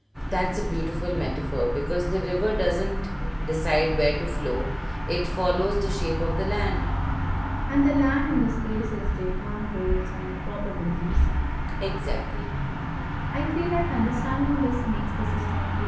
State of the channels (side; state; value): both; identical; correlation 1.00